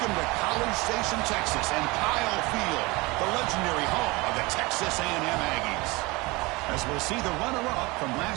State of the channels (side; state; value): left; quieter; 23.9 dB